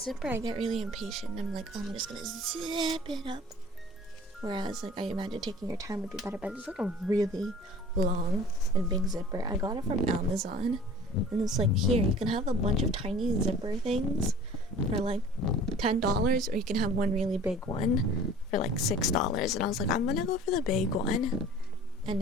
I get really impatient. I'm like, oh, I'm just gonna zip it up. Whereas, like, I imagine taking your time would be better, but it's like a really long and big zipper. I got it from Amazon, and it's like, here, you can have a bunch of tiny zipper things for like $10, or you can have one really big one for like $6. And I was like, I'm gonna go for the big one. And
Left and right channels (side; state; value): both; normal; correlation 0.45